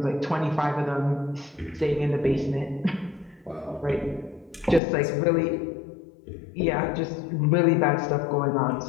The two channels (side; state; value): right; drops out; at 4.8 s